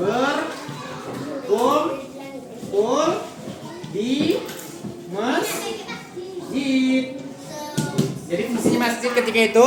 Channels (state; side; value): identical; both; correlation 1.00